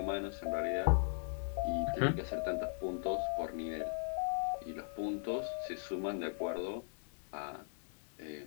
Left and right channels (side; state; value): right; silent; digital silence